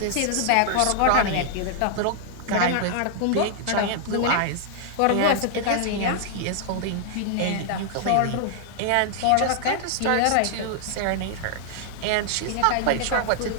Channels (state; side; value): different; both; correlation -0.01